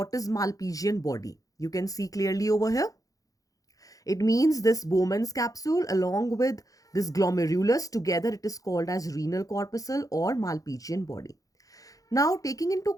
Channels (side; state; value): right; late; 0.17 ms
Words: is Malpighian body. You can see clearly over here. It means this Bowman's capsule along with this glomerulus together, it is called as renal corpuscle or Malpighian body. Now, taking into